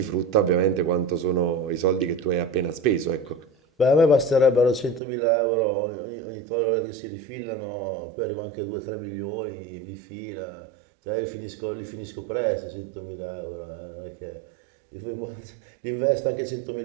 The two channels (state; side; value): drops out; left; at 5.0 s